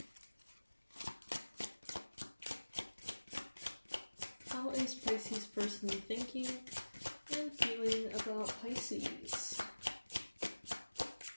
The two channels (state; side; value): inverted; both; correlation -1.00